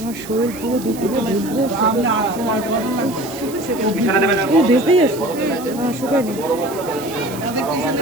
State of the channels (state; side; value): noise; right; hiss, 16 dB below the sound